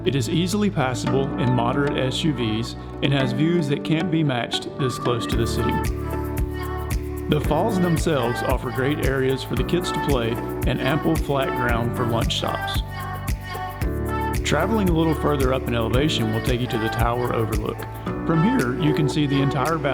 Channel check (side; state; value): both; identical; correlation 1.00